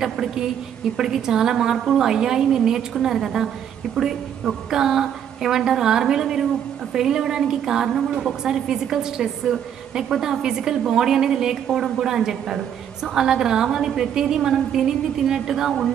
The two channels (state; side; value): quieter; left; 9.1 dB